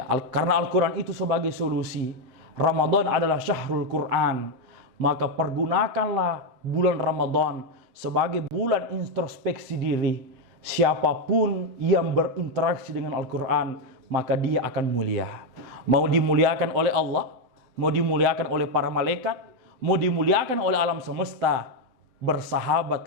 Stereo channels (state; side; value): late; left; 7.9 ms